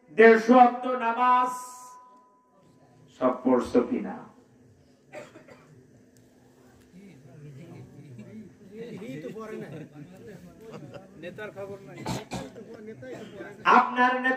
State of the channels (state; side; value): identical; both; correlation 1.00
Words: 150 ওয়াক্ত নামাজ সব পড়ছো কিনা? আপনার